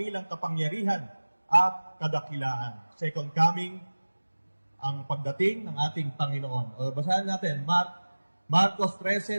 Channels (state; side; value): inverted; both; correlation -1.00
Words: kapangyarihan at kadakilaan. Second coming, ang pagdating ng ating Panginoon. Basahin natin, Marcos 13,